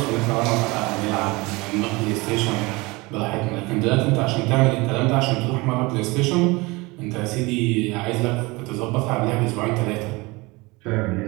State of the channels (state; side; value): quieter; left; 23.9 dB